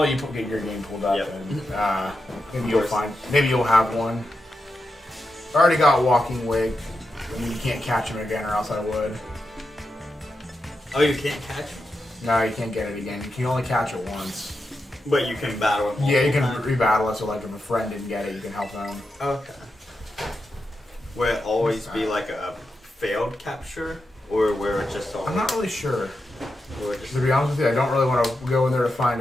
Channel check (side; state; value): both; normal; correlation 0.88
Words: you get your game pulled up, Yep. and maybe you'll have one. I already got Walking Wig. I mean, you can't catch him again, or else I would. Oh, you can't catch him? No, you can't get it again. You can only catch it once. But you can battle him. Yeah, you can rebattle it. So, like, if a friend didn't get it, you can help them. Okay. Will it always be like a failed capture, or where it just always? I'm not really sure. Just... To be honest with you, I don't really want to go in there to find